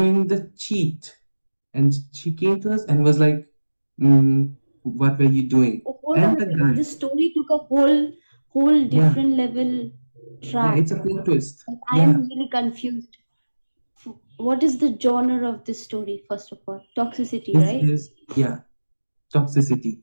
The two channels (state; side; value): inverted; both; correlation -1.00